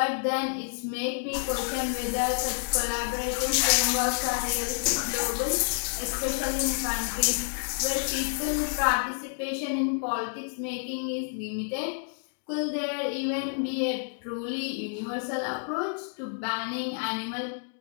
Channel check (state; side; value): silent; right; digital silence